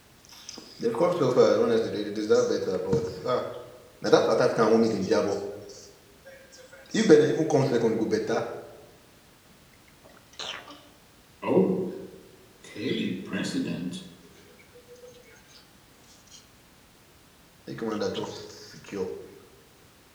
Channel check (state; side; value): identical; both; correlation 1.00